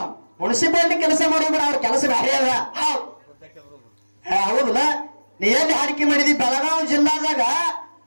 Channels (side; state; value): both; inverted; correlation -1.00